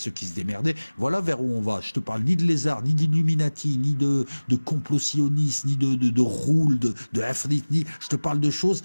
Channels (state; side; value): inverted; both; correlation -1.00